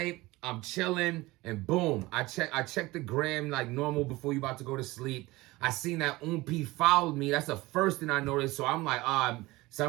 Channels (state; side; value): quieter; left; 20.3 dB